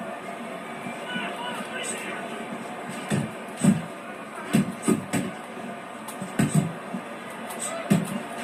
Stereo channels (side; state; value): both; identical; correlation 1.00